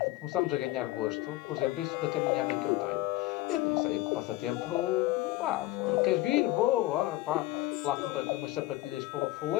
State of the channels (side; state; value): right; quieter; 17.6 dB